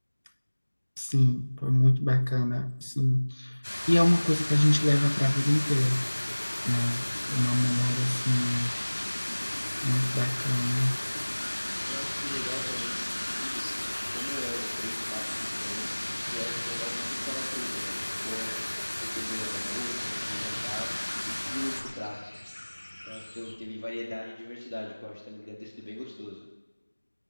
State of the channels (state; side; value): inverted; both; correlation -1.00